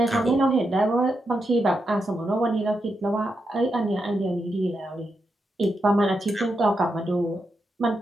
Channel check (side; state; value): both; normal; correlation 0.85